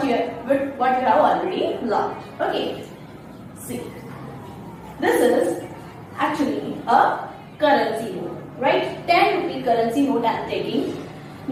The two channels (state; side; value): identical; both; correlation 1.00